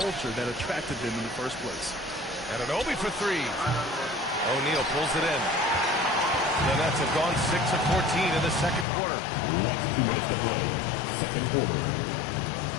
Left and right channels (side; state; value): right; drops out; at 8.8 s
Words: that attracted them in the first place? Anunoby for three. O'Neal pulls it in. The Nets have gone 6 of 14 in the second quarter. Second quarter.